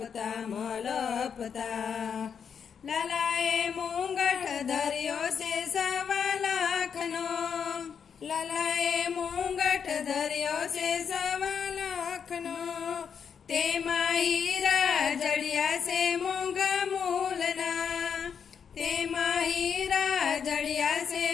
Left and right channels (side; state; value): right; quieter; 7.0 dB